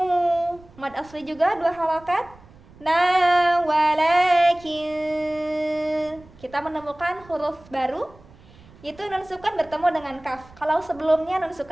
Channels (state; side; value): noise; right; rumble, 24 dB below the sound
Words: mad asli juga 2 harokat, na walakin. Kita menemukan huruf baru, itu nun sukun bertemu dengan kaf. Kalau sebelumnya nun